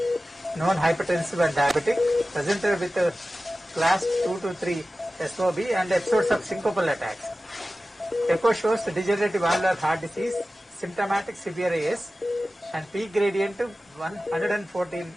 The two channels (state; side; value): normal; both; correlation 0.95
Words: non-hypertensive and diabetic, presented with class 2 to 3 SOB and episodes of syncopal attacks. Echo shows degenerative valvular heart disease, symptomatic severe AS, and peak gradient 114